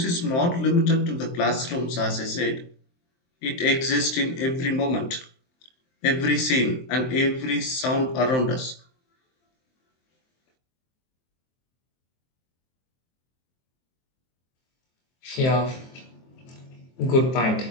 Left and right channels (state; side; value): late; right; 23 ms